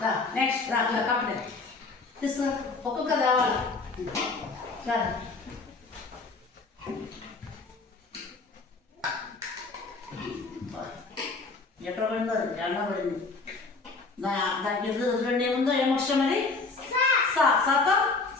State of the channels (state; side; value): quieter; right; 3.9 dB